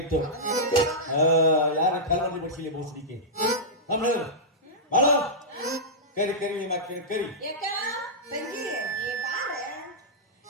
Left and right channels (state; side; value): normal; both; correlation -0.11